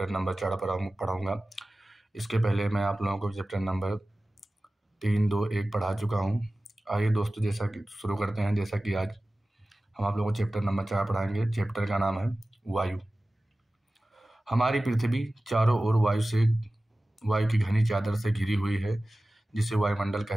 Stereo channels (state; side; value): normal; both; correlation 0.96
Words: नंबर 4 पढ़ाऊँगा। इसके पहले मैं आप लोगों को चैप्टर नंबर 3, 2, 1 पढ़ा चुका हूँ। आइए दोस्तों, जैसा कि शुरू करते हैं। जैसा कि आज हम आप लोगों को चैप्टर नंबर 4 पढ़ाएंगे। चैप्टर का नाम है वायु। हमारी पृथ्वी चारों ओर वायु की घनी चादर से घिरी हुई है, जिसे वायुमंडल